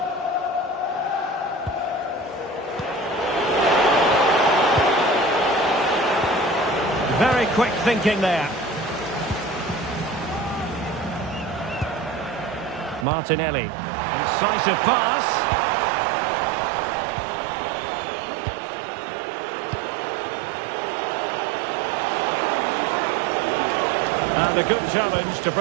Very quick thinking there. Martinelli. Incisive pass. And a good challenge to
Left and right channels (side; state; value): left; drops out; at 13.1 s